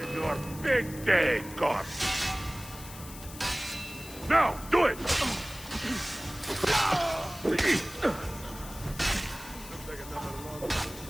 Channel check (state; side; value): noise; left; hiss, 15 dB below the sound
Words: Your big day, Corp. Now, do it!